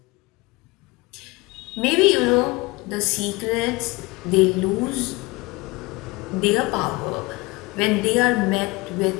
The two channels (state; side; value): quieter; right; 23.6 dB